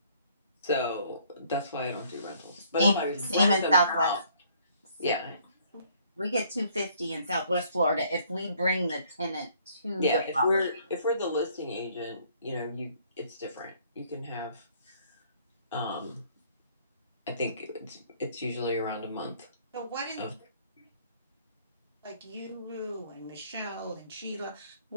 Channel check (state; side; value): inverted; both; correlation -0.62